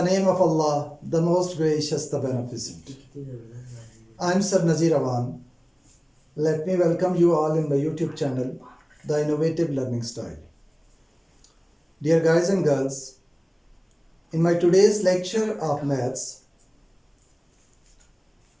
name of Allah, the most gracious, the beneficent. I'm Sir Nazir Awan. Let me welcome you all in my YouTube channel, The Innovative Learning Style. Dear guys and girls, in my today's lecture of maths,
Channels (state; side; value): identical; both; correlation 1.00